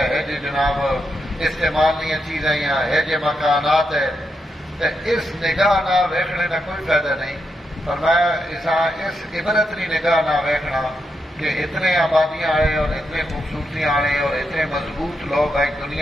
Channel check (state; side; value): normal; both; correlation 0.83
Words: جی جناب استعمال نہیں چیزیں ہے جی مکانات ہے. تو اس نگاہ نہ ویکھنے کا کوئی فائدہ نہیں. فرمایا اس عبرت کی نگاہ نہ ویکھنا کہ اتنے آبادیاں آئے اور اتنے خوبصورتیاں آئے اور اتنے مضبوط لوگ آئے